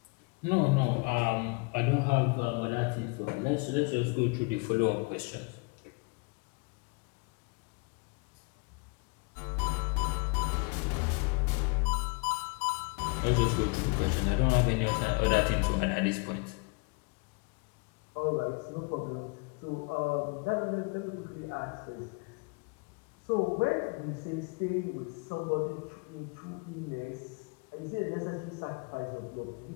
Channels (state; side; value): quieter; right; 31.7 dB